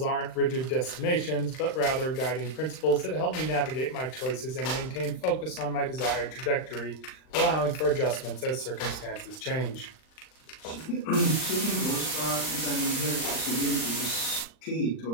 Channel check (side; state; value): right; late; 39 ms